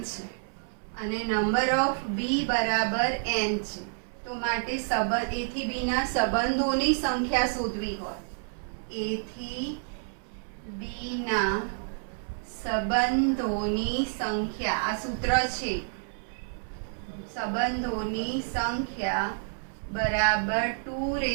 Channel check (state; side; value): silent; left; 59 dB below the other